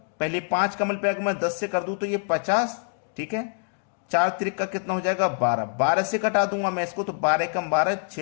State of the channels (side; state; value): right; silent; digital silence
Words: पहले 5 का मल्टीप्लाई मैं 10 से कर दूं तो ये 50। ठीक है, 4 त्रिक का कितना हो जाएगा, 12। 12 से कटा दूंगा मैं इसको तो 12 कम 12,